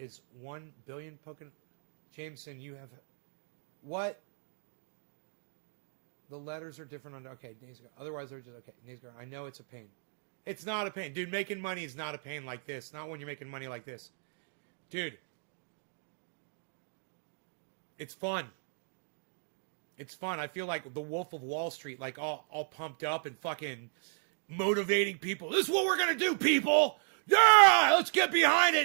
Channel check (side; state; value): left; silent; 55 dB below the other